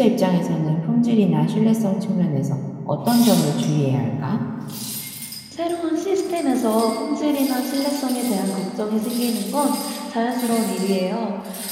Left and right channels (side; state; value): both; identical; correlation 1.00